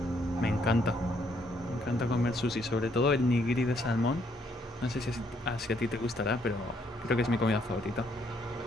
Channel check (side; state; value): both; normal; correlation 0.70